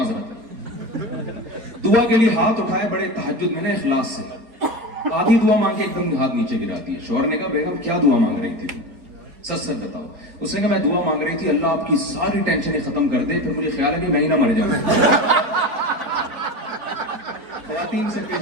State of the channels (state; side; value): late; left; 4.2 ms